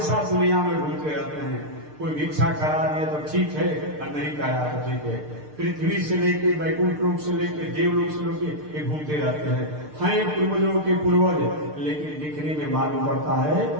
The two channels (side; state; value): left; late; 6.6 ms